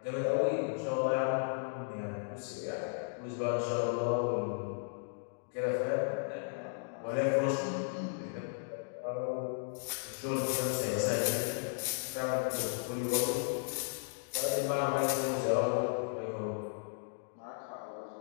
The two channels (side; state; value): right; silent; digital silence